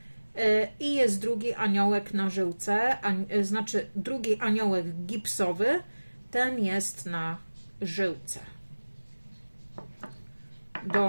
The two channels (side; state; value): both; inverted; correlation -1.00